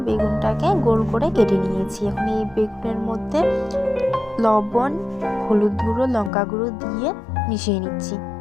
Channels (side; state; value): right; drops out; at 6.3 s